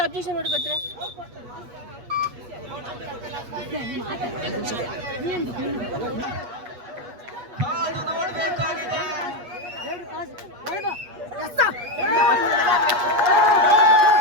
ಅಬ್ಜೆಕ್ಷನ್ ಮಾಡ್ಕೊತ್ರೆ ನೋಡ್ಬೇಕಾಗಿದೆ.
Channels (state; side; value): late; left; 8.2 ms